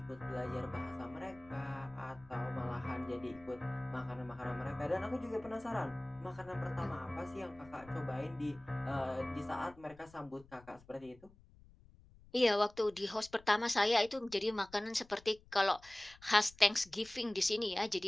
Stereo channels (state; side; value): noise; left; rumble, 24 dB below the sound